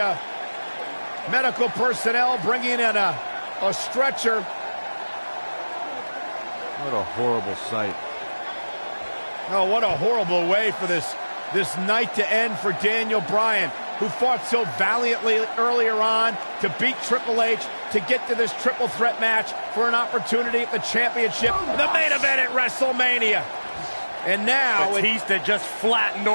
medical personnel bringing in a stretcher. What a horrible sight. Oh, what a horrible way for this night to end for Daniel Bryan, who fought so valiantly earlier on to beat Triple H, to get to this triple threat match for an opportunity at the championship, the main event at WrestleMania. And now Batista just flattened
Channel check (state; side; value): inverted; both; correlation -1.00